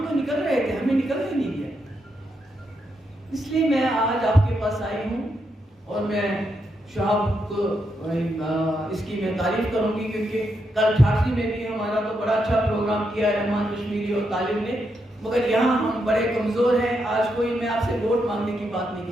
تو نکل رہے تھے، ہمیں نکلنے نہیں دیا۔ اس لیے میں آج آپ کے پاس آئی ہوں اور میں شہاب کو اس کی میں تعریف کروں گی، کیونکہ کل ٹھاٹھی میں بھی ہمارا تو بڑا اچھا پروگرام کیا ہے رحمان کشمیری اور طالب نے، مگر یہاں ہم بڑے کمزور ہیں۔ آج کوئی میں آپ سے ووٹ مانگنے کی بات نہیں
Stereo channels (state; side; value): normal; both; correlation 0.82